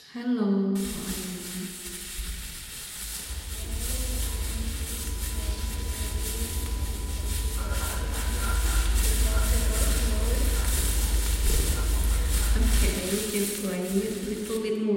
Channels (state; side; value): identical; both; correlation 1.00